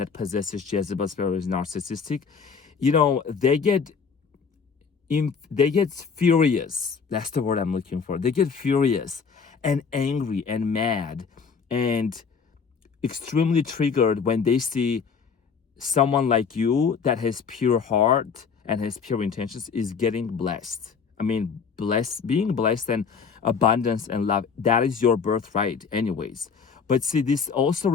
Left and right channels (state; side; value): quieter; right; 5.8 dB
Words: possesses Jezebel spirit is narcissistic, they get furious. That's the word I'm looking for. They get furious and angry and mad and extremely triggered when they see someone like you that has pure heart and has pure intentions is getting blessed. I mean, being blessed and abundance and love, that is your birthright anyways. But see, this also,